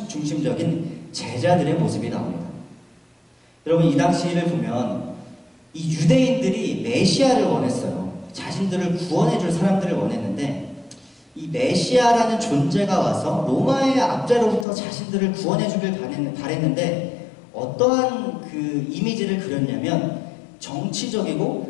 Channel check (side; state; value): right; drops out; at 14.7 s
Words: 제자들의 모습이 나옵니다. 여러분 이 당시를 보면 이 유대인들이 메시아를 원했어요. 자신들을 구원해줄 사람들을 원했는데, 이 메시아라는 존재가 와서 로마의 압제로부터 자신들을 구원해주길 바랬는데 어떠한 그 이미지를 그렸냐면,